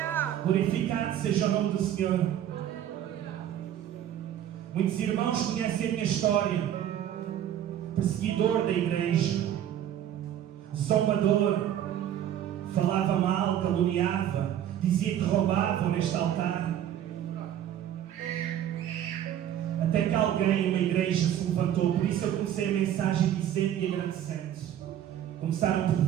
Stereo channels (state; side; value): quieter; left; 10.8 dB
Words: Glorificado seja o nome do Senhor. Muitos irmãos conhecem a minha história. Perseguidor da igreja, zombador, falava mal, caluniava, dizia que roubavam neste altar. Até que alguém, uma igreja, se levantou. Por isso eu comecei a mensagem dizendo e agradecendo. Começaram